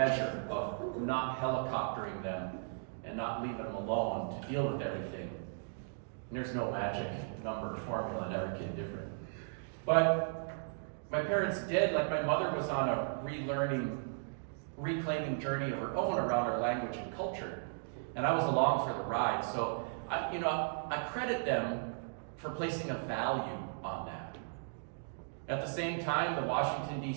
of not helicoptering them and not leaving them alone to deal with everything. And there's no magic number or formula, and every kid different. But my parents did, like my mother was on a reclaiming journey of her own around our language and culture. And I was along for the ride. So, I credit them for placing a value on that. At the same time, the Washington,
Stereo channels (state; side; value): silent; left; digital silence